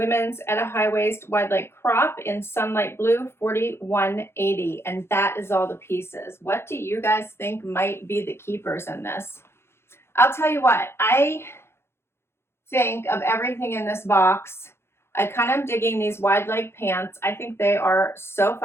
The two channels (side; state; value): right; late; 0.12 ms